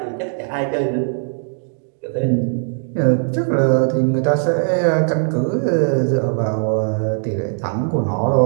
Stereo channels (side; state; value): left; silent; 63 dB below the other